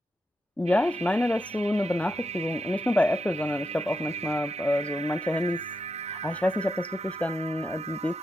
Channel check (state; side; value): normal; both; correlation 0.85